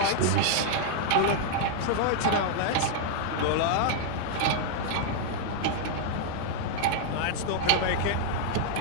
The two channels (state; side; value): different; both; correlation -0.01